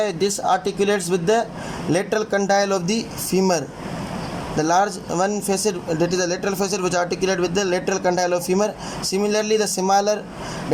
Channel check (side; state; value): both; identical; correlation 1.00